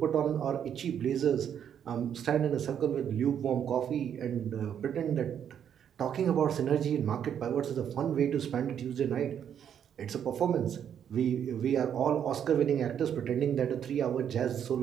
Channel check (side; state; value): left; quieter; 8.9 dB